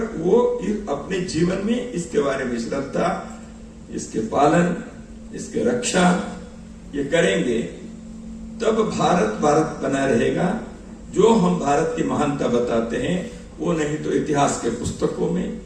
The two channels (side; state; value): both; identical; correlation 1.00